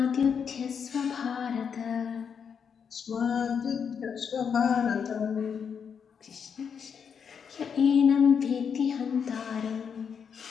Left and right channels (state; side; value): quieter; right; 6.9 dB